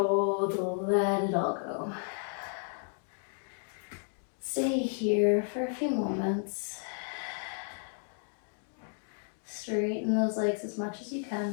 let it all go. Stay here for a few moments. Straighten those legs as much as you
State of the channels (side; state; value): right; silent; 56 dB below the other